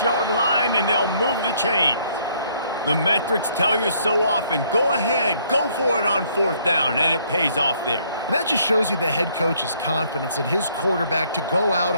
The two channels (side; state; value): both; inverted; correlation -0.65